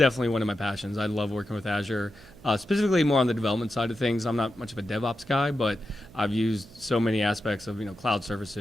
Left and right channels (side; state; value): right; noise; hum, 22 dB below the sound